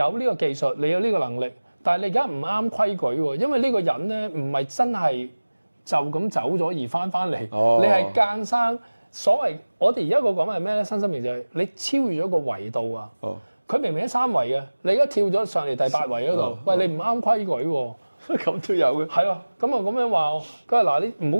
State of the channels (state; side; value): inverted; both; correlation -1.00